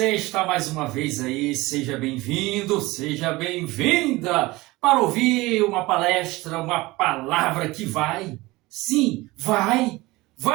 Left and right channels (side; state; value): left; quieter; 20.7 dB